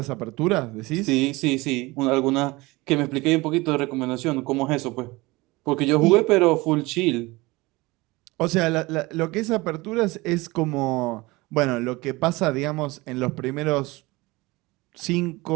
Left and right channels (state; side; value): quieter; left; 22.1 dB